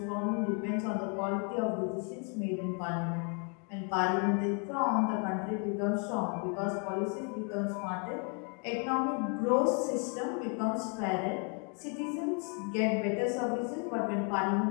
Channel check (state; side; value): quieter; right; 38.0 dB